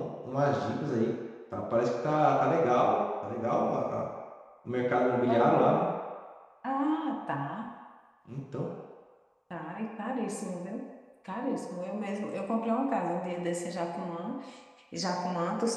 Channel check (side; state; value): both; identical; correlation 1.00